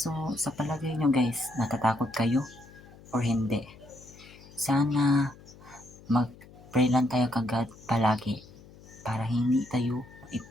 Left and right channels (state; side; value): noise; left; hum, 21 dB below the sound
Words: sa palagay nyo guys, natatakot kayo or hindi? Sana mag-pray lang tayo kagad palagi para hindi tayo